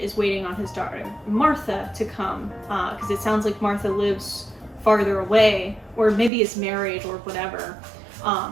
is waiting on his daughter Martha to come, because it sounds like Martha lives farther away, or maybe is married or whatever.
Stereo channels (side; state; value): left; drops out; at 6.3 s